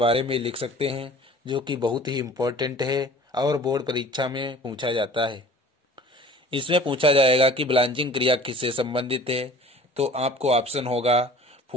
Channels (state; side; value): normal; both; correlation 0.46